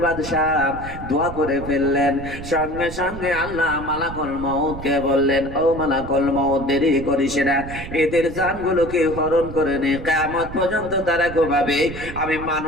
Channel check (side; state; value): right; noise; rumble, 11 dB below the sound